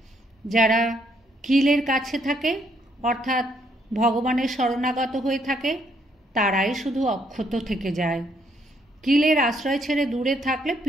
যারা কিলের কাছে থাকে, অর্থাৎ ভগবানের শরণাগত হয়ে থাকে, তারাই শুধু অক্ষত থেকে যায়। কিলের আশ্রয় ছেড়ে দূরে থাকলে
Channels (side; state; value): both; normal; correlation 0.71